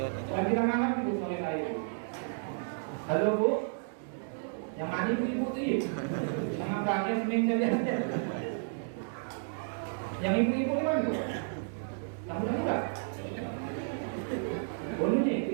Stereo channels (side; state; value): left; silent; digital silence